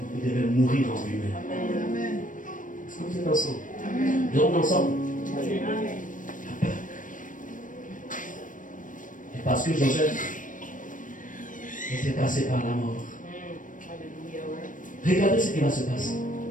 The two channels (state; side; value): late; right; 0.38 ms